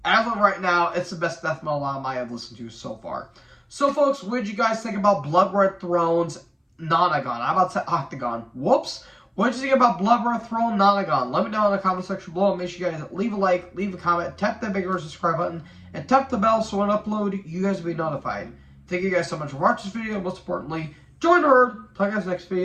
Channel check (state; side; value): identical; both; correlation 1.00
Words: as of right now, it's the best death metal album I have listened to so far. So, folks, what did you guys think about Blood Red Throne's Nonagon? I'm about to say Octagon. Whoops. What did you think about Blood Red Throne Nonagon? Let me know in the comment section below. Make sure you guys leave a like, leave a comment, tap that big subscribe button, and tap the bell so when I upload, you guys will be notified. Thank you guys so much for watching this video. Most importantly, join the herd. Talk to you guys next